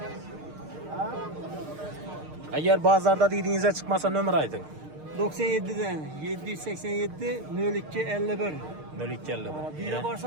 Eğer bazarda dediğinize çıkmasa nömrə aytın. 97'den 787 02 51. 0250. Biri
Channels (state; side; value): late; left; 6.5 ms